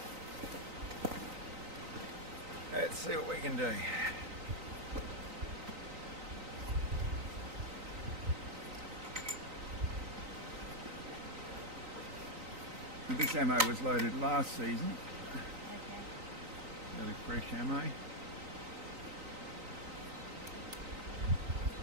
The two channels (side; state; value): left; late; 3.9 ms